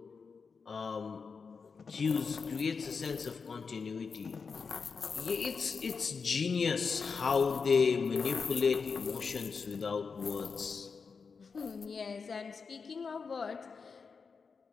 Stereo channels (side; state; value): right; quieter; 5.3 dB